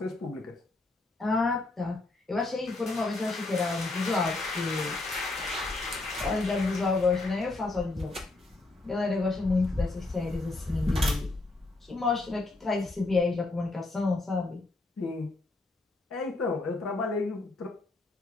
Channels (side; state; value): right; quieter; 3.1 dB